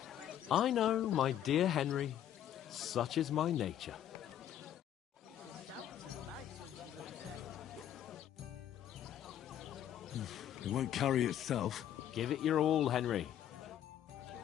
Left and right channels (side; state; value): right; quieter; 10.8 dB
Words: I know, my dear Henry. Such is my nature. She stamps and bites when she's upset. It won't carry itself. Give it your all, Henry. We'll